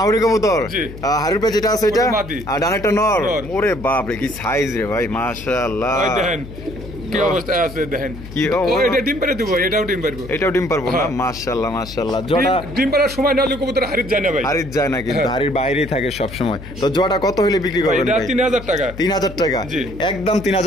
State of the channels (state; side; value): noise; left; hum, 13 dB below the sound